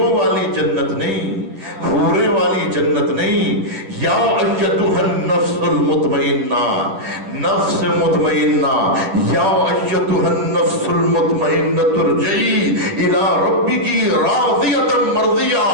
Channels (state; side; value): late; left; 10 ms